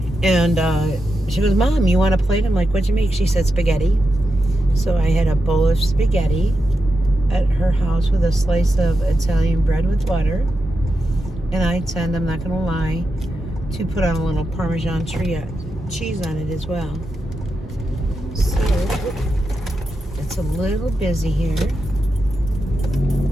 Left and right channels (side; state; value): both; normal; correlation 0.88